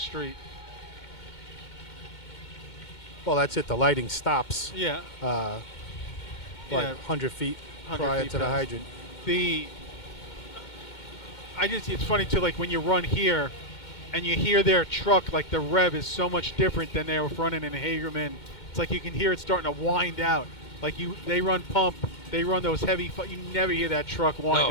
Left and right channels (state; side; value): late; right; 2.1 ms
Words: Well, that's it. The lighting stops. Yeah. Like Yeah. 100 feet 100 prior feet to the past. hydrant. It's funny too, like when you run here and you hear their truck, like the rev is so much different than they were running in Hagerman. It's like you can hear it starting to wind out. Like they run pump, they run those heavy, you never hear that truck wind